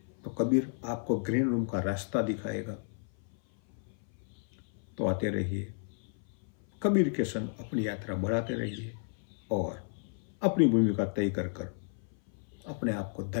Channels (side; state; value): right; silent; 56 dB below the other